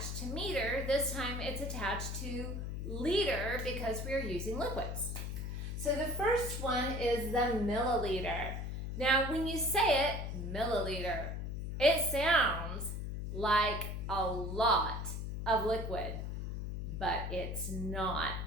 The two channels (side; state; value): left; noise; hum, 4 dB below the sound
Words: to meter, this time it's attached to liter because we are using liquids. So the first one is the milliliter. Now, when you say it, milliliter, it sounds like a lot of liquid, but it's not.